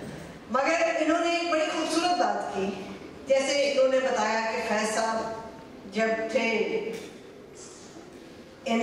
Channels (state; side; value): identical; both; correlation 1.00